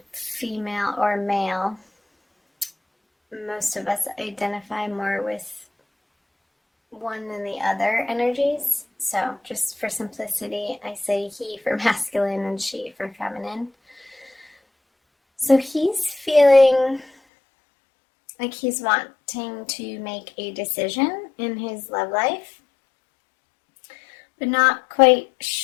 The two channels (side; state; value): right; drops out; at 17.1 s